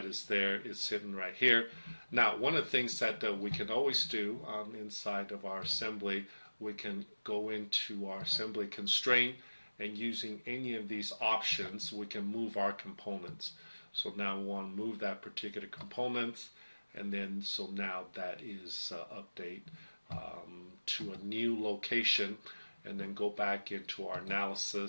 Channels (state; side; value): inverted; both; correlation -1.00